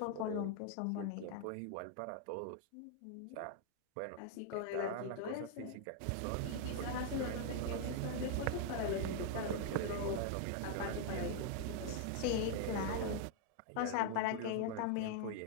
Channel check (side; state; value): both; different; correlation 0.00